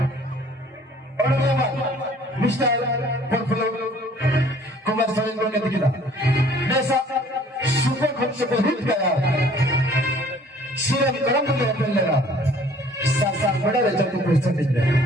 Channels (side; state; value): both; normal; correlation 0.55